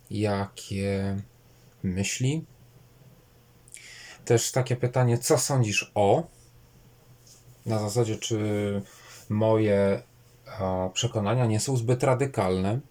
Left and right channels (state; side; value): identical; both; correlation 1.00